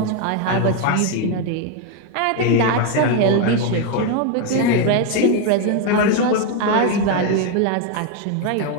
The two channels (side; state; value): both; different; correlation 0.02